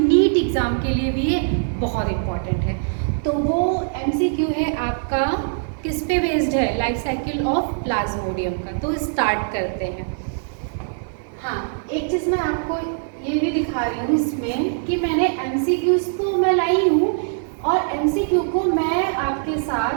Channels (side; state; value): left; silent; digital silence